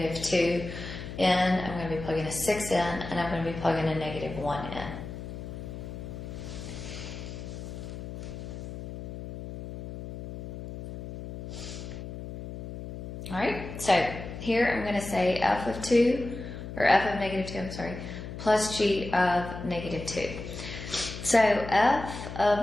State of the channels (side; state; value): left; noise; hum, 9 dB below the sound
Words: in, I'm going to be plugging a 6 in, and I'm going to be plugging a -1 in. Alright, so here I'm going to say f of -2, I'm sorry, plus g of -2. So f